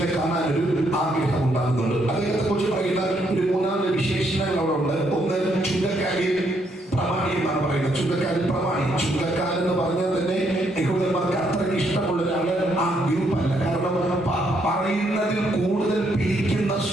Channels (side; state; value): both; normal; correlation 0.73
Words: കാണാൻ ഒരു ആഗ്രഹം ഉണ്ടാകുന്നുണ്ട്. അദ്ദേഹത്തെ കുറിച്ച് പറയുന്ന ഒരു 3 വിശേഷണങ്ങൾ അവിടെ ഉണ്ട്. ഒന്ന്, ചുങ്കക്കാരിൽ പ്രമാണി എന്നാണ് പറയുന്നത്. ചുങ്കക്കാരിൽ പ്രമാണി. ചുങ്കക്കാരൻ എന്ന് പറഞ്ഞാൽ തന്നെ യഹൂദന്മാർക്ക് അത്രയ്ക്ക് ഇഷ്ടമുള്ള ഒരാള് ആ ഗ്രൂപ്പ് അല്ല. കാരണം പറയുന്നതിൽ കൂടുതൽ പിരിക്കുന്ന